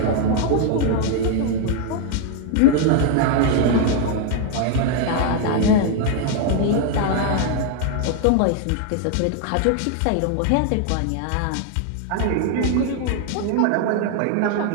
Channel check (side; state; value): both; different; correlation 0.01